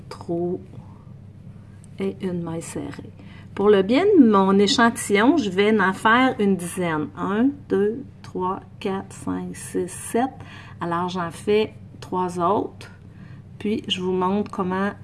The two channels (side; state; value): both; identical; correlation 1.00